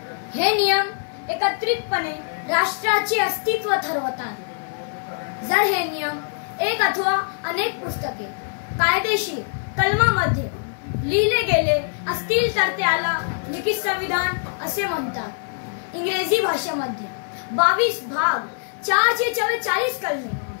हे नियम एकत्रितपणे राष्ट्राचे अस्तित्व ठरवतात। जर हे नियम एक अथवा अनेक पुस्तके, कायदेशीर कलमांमध्ये लिहिले गेले असतील तर त्याला लिखित संविधान असे म्हणतात। इंग्रजी भाषेमध्ये 22 भाग, 444 कलमे,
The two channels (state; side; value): silent; right; 56 dB below the other